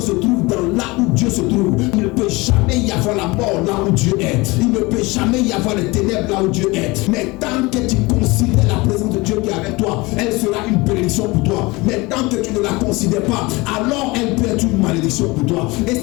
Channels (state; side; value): quieter; right; 23.5 dB